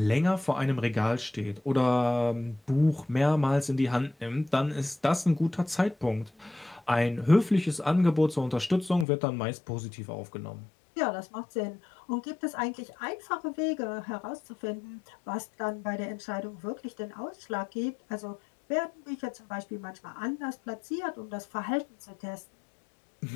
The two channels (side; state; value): right; drops out; at 9.1 s